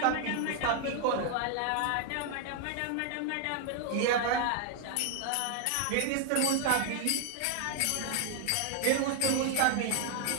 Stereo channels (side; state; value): both; different; correlation 0.00